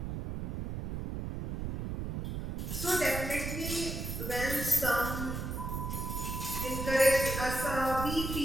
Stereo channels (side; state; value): right; noise; rumble, 4 dB below the sound